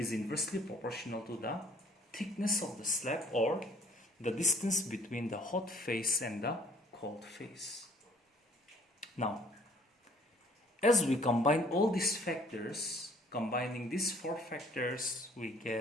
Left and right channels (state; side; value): normal; both; correlation 0.58